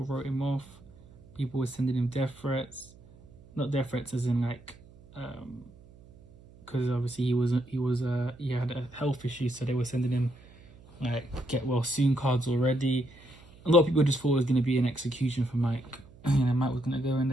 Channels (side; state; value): right; noise; hum, 23 dB below the sound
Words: wrote him off. People were sending him death threats. Not death threats as in like, because obviously he had a health issue, so they were sending him like get well soon cards already. A lot of people just thought it was going to be an execution for Mike. Mike was going to go in